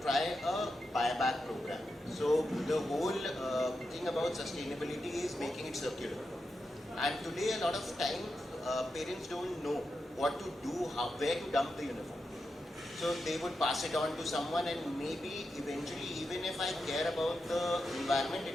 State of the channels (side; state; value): both; normal; correlation 0.88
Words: try a buyback program. So the whole thing about sustainability is making it circular. And today a lot of time parents don't know what to do, where to dump the uniform. So they would pass it on to someone, and maybe eventually, even if I care about the environment,